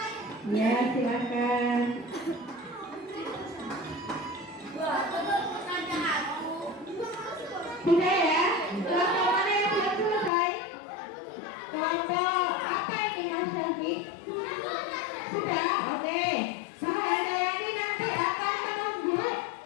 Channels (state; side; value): drops out; right; at 10.3 s